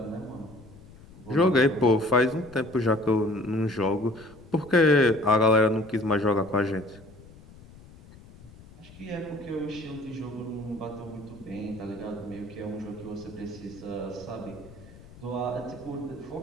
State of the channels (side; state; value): left; noise; rumble, 21 dB below the sound